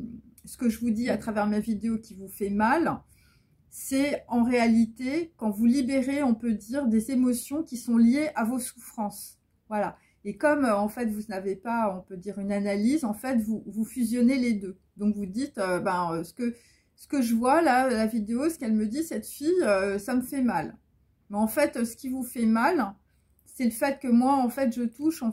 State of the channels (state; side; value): identical; both; correlation 1.00